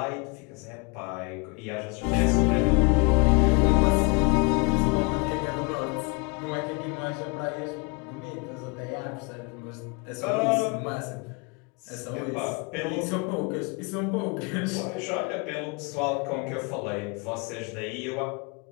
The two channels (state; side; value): quieter; right; 30.8 dB